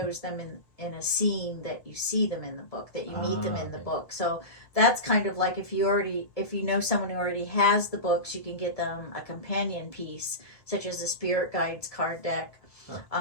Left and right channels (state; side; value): late; right; 1.3 ms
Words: them in a scene that you see them in the book, that you meet them in the book. So that's kind of like if you know someone who already has the books, you can get them a companion piece, such as the spirit guides card deck.